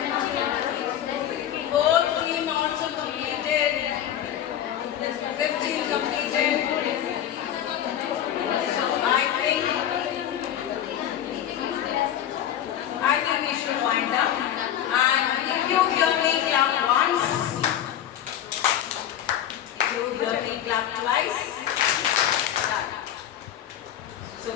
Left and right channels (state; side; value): quieter; right; 10.7 dB